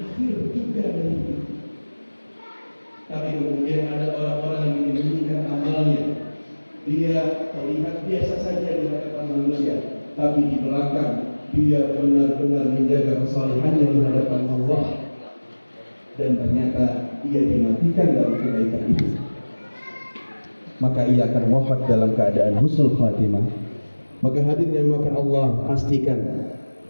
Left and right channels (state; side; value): inverted; both; correlation -1.00